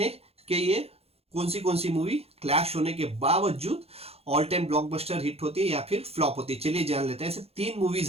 कि ये कौन सी मूवी क्लैश होने के बावजूद ऑल टाइम ब्लॉकबस्टर हिट होती है या फिर फ्लॉप होती है। चलिए जान लेते हैं। ऐसे तीन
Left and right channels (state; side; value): late; left; 0.29 ms